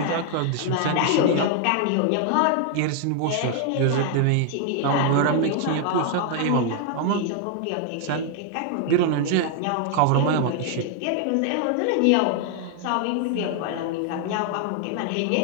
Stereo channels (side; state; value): both; different; correlation 0.00